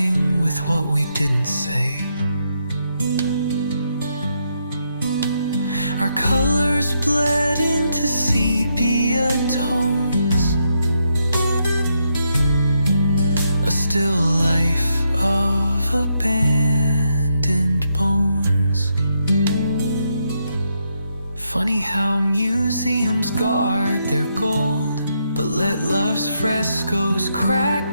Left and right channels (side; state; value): both; inverted; correlation -0.80